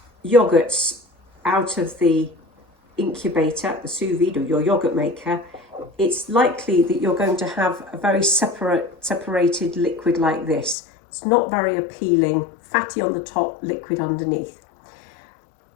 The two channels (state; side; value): drops out; right; at 10.8 s